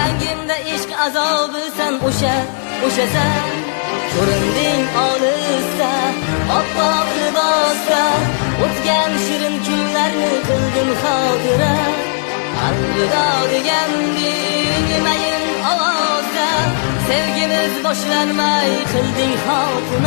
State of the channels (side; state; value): right; silent; digital silence